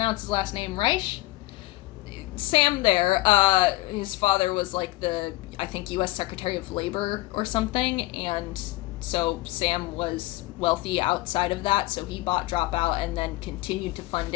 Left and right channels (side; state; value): right; quieter; 19.5 dB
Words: his last name, Reich? Sam there, his father was like the, I think, U.S. Secretary of Labor or something, and so Sam was wealthy outside of that, so he bought Dropout and then continued to fund